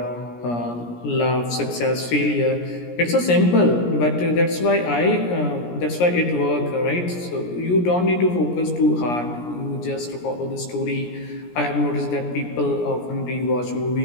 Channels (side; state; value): right; late; 17 ms